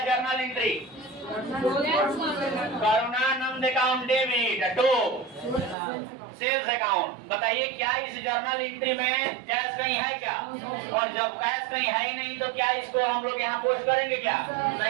journal entry Karunanand account debit to sales account. बताइए क्या इस जर्नल एंट्री में कैश कहीं है क्या? और जब कैश कहीं है ही नहीं तो क्या इसको हम लोग यहाँ पोस्ट करेंगे क्या?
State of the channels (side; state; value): left; drops out; at 5.8 s